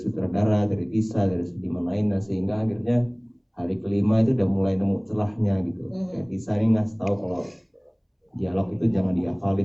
dari Tisa, dari seniman lainnya, sehingga akhirnya hari kelima itu udah mulai nemu celahnya gitu. Kayak Tisa ini ngasih tahu kalau dialog itu jangan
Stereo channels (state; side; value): identical; both; correlation 1.00